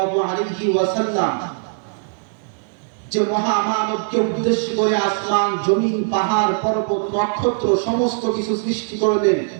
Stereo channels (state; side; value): silent; left; digital silence